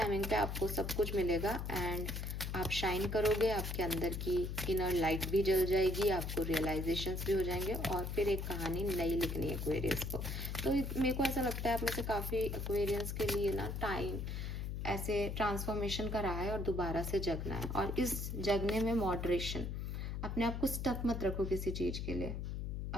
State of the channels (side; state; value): left; noise; hum, 4 dB below the sound